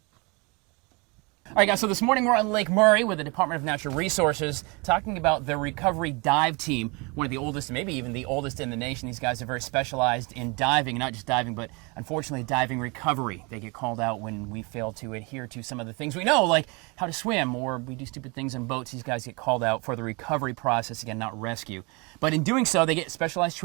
All right, guys, so this morning we're on Lake Murray with the Department of Natural Resources talking about the recovery dive team, one of the oldest, maybe even the oldest in the nation. These guys are very specialized in diving, not just diving, but unfortunately diving recovery. They get called out when we fail to adhere to some of the things we know, like how to swim, or we do stupid things in boats. These guys get called out for the recovery process, again, not rescue. But in doing so, they get specialized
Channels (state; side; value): quieter; left; 29.1 dB